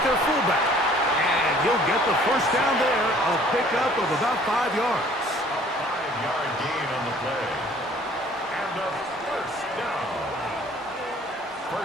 their fullback. And he'll get the first down there, a pickup of about 5 yards. A 5-yard gain on the play. And a first down.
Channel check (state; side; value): normal; both; correlation 0.55